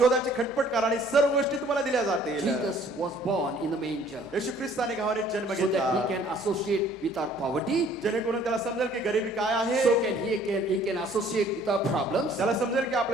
खटपट करा आणि सर्व गोष्टी तुम्हाला दिल्या जातील. Jesus was born in the manger येशू ख्रिस्ताने गव्हाणीत जन्म so that he घेतला, can associate with our poverty, जेणेकरून त्याला समजेल की गरिबी काय आहे, so he can associate with our problems, त्याला समजेल की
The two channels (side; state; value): both; normal; correlation 0.57